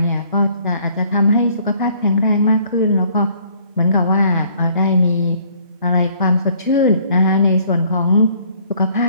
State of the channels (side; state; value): both; inverted; correlation -0.60